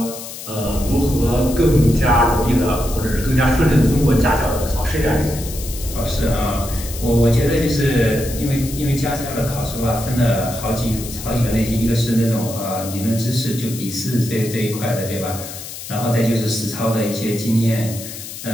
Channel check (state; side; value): noise; left; hiss, 11 dB below the sound